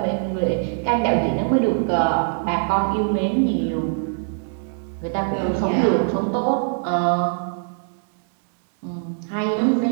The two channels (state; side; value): silent; left; digital silence